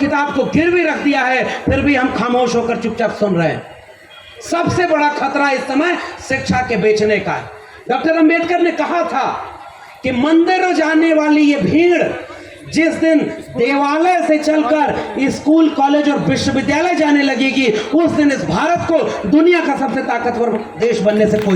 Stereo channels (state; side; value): identical; both; correlation 1.00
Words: को गिरवी रख दिया है, फिर भी हम खामोश होकर चुपचाप सुन रहे हैं। सबसे बड़ा खतरा इस समय शिक्षा के बेचने का है। डॉक्टर अंबेडकर ने कहा था कि मंदिर जाने वाली ये भीड़ जिस दिन देवालय से चलकर स्कूल, कॉलेज और विश्वविद्यालय जाने लगेगी, उस दिन इस भारत को दुनिया का सबसे ताकतवर देश बनने से